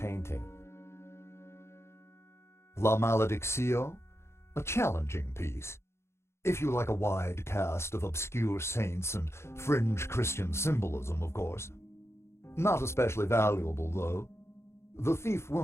La Maledictio, a challenging piece. If you like a wide cast of obscure saints and fringe Christian symbolism, of course. Not especially valuable, though. The thief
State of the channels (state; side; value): late; right; 0.13 ms